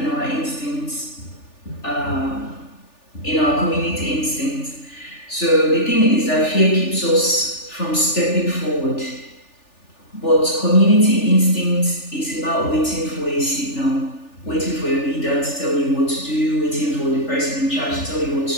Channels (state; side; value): late; right; 3.4 ms